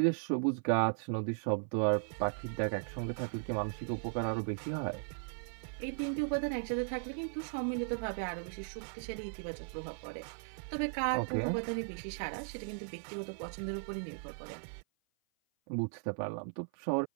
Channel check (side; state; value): left; silent; 53 dB below the other